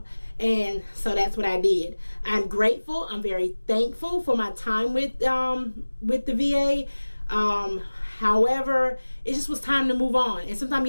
And so that's what I did. I'm grateful. I'm very thankful for my time with the VA. However, it just was time to move on. And sometimes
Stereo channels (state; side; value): inverted; both; correlation -1.00